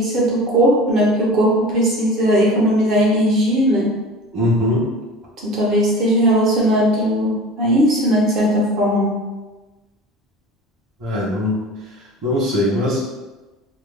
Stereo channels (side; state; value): both; normal; correlation 0.38